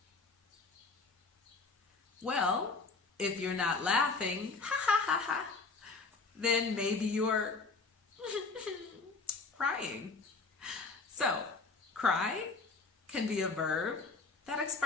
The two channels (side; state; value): right; quieter; 4.1 dB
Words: Well, if you're not laughing, ha ha ha ha, then maybe you're crying. So, cry can be a verb that